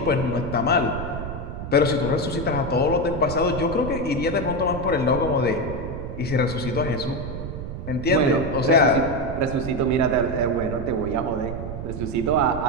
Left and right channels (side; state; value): right; noise; rumble, 7 dB below the sound